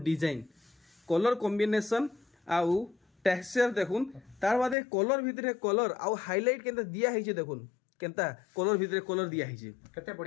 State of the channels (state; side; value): drops out; right; at 4.8 s